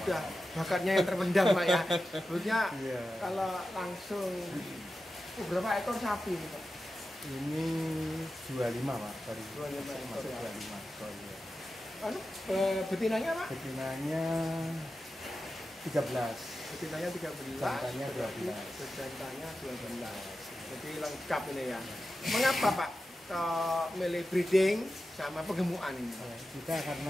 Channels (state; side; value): normal; both; correlation 0.92